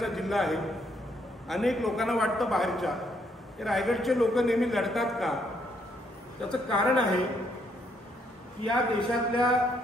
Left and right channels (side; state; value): both; normal; correlation 0.72